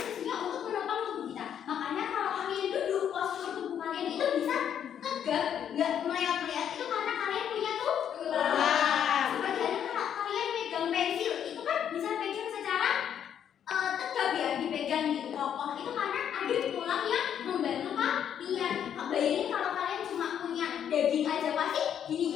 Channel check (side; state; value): right; quieter; 9.1 dB